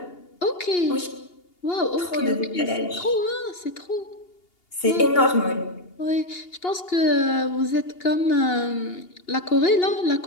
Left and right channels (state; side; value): late; right; 2.8 ms